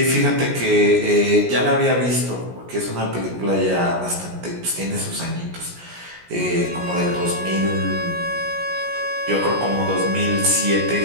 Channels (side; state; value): left; late; 17 ms